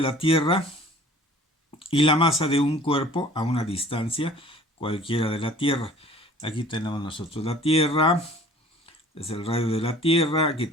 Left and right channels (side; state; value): both; normal; correlation 0.49